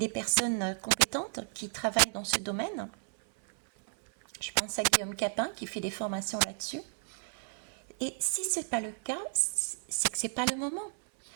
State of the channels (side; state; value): left; silent; 56 dB below the other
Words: personnes compétentes qui travaillent dans ce domaine. Je pense à Guillaume Capin qui fait des formations là-dessus. Et si ce n'est pas le cas, c'est que ce n'est pas le moment.